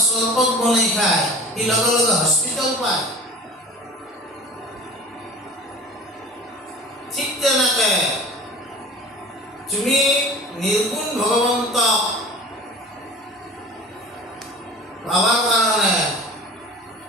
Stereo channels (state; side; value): normal; both; correlation 0.39